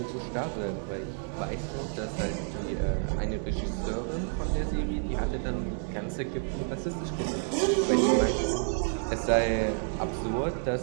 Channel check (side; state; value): left; silent; 56 dB below the other